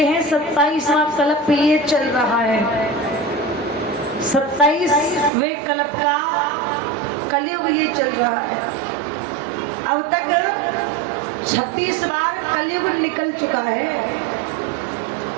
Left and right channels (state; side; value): drops out; left; at 5.3 s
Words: हैं, 27वां कल्प ये चल रहा है। 27वें कल्प का कलयुग ये चल रहा है। अब तक 26 बार कलयुग निकल चुका है,